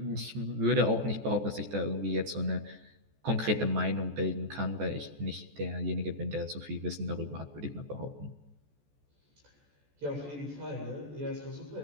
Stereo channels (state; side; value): late; left; 14 ms